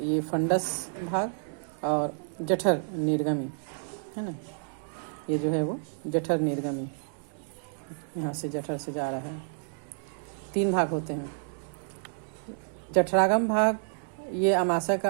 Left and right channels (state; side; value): silent; left; digital silence